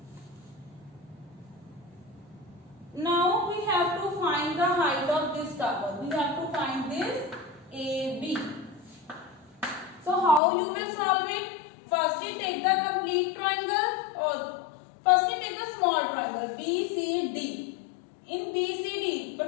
Now we have to find the height of this tower. We have to find this AB. So how you will solve it? Firstly take the complete triangle, or firstly take the small triangle BCD. In BCD,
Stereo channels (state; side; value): drops out; right; at 10.4 s